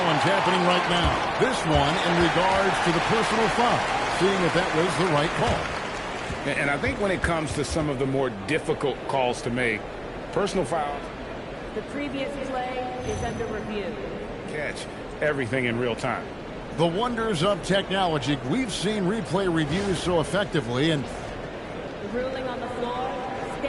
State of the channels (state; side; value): identical; both; correlation 1.00